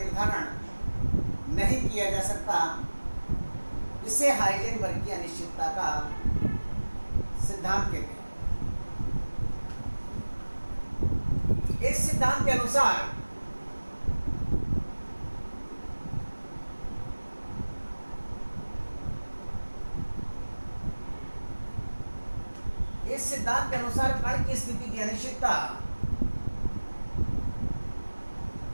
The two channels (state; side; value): inverted; both; correlation -1.00